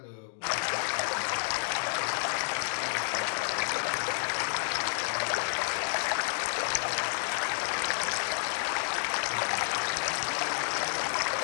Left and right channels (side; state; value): right; silent; digital silence